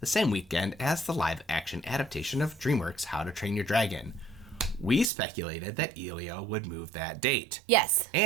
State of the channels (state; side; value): drops out; left; at 5.1 s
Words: same weekend as the live-action adaptation of DreamWorks' How to Train Your Dragon. We speculated that Elio would move that date. Yes.